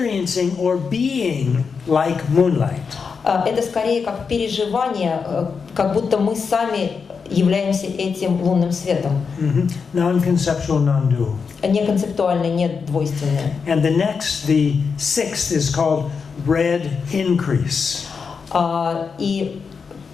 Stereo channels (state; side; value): quieter; right; 5.6 dB